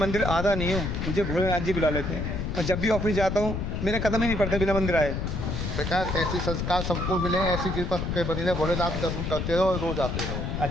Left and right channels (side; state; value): left; noise; rumble, 2 dB below the sound